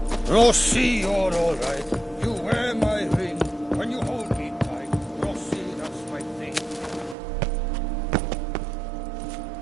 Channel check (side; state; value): left; drops out; at 7.2 s